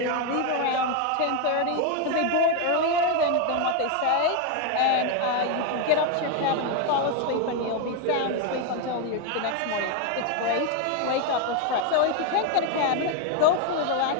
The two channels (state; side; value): different; both; correlation 0.01